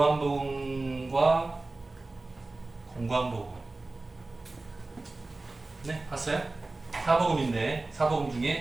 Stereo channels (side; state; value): left; quieter; 3.2 dB